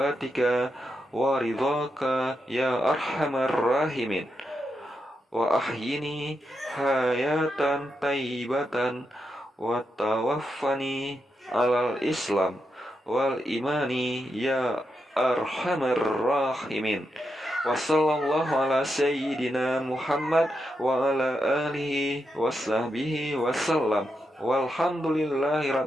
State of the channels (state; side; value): normal; both; correlation 0.85